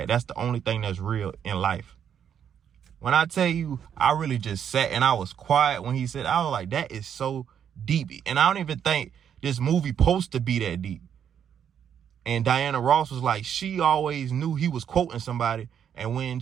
That's the only thing that's real in life. When I tell you, I really just sat and I was quiet when he said, I was like, that is so deep. And I don't even think this movie supposed to be that deep. And Diana Ross was like, she always knew he was quoting somebody. And when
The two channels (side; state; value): left; quieter; 8.6 dB